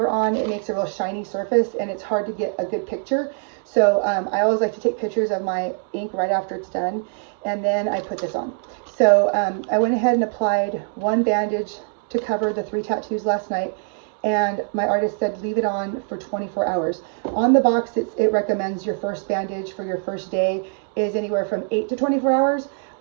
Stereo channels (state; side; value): silent; left; 56 dB below the other